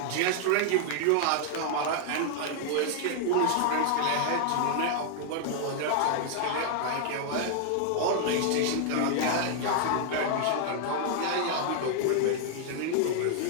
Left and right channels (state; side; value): different; both; correlation 0.00